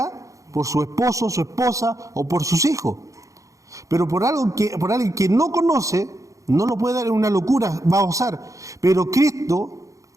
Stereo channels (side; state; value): left; late; 0.16 ms